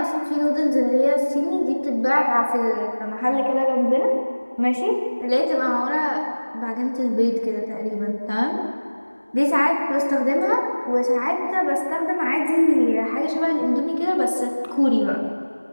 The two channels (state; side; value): inverted; both; correlation -1.00